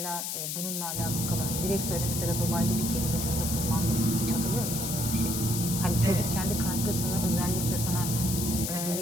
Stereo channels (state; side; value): noise; left; hiss, 3 dB below the sound